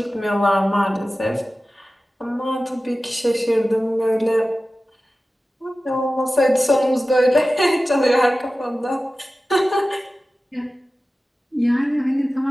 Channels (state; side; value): normal; both; correlation 0.95